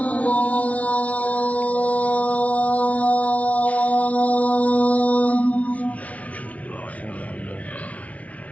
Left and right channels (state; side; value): late; right; 0.067 ms